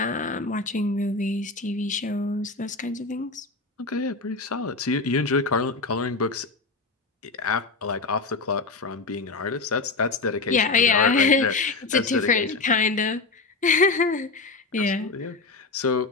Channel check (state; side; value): quieter; right; 3.9 dB